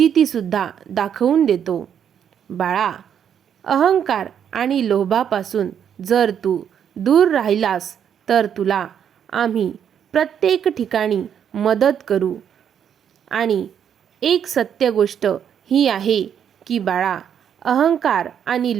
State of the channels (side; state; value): left; quieter; 8.6 dB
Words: दाखवून देतो. बाळा, अहंकार आणि लोभापासून जर तू दूर राहिलास तर तुला आम्ही प्रत्येक ठिकाणी मदत करू. आणि एक सत्य गोष्ट ही आहे की बाळा, अहंकार आणि